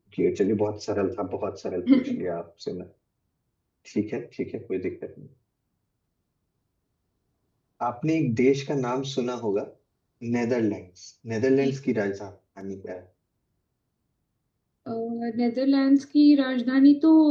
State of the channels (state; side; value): identical; both; correlation 1.00